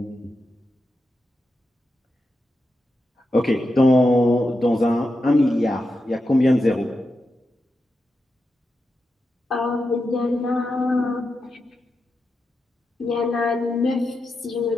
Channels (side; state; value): both; normal; correlation 0.88